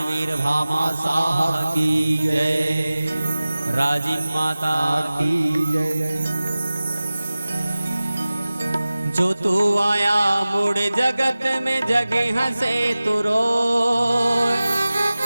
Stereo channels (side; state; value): both; inverted; correlation -0.97